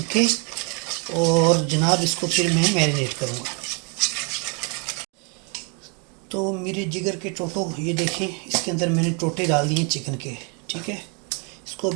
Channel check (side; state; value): left; quieter; 35.1 dB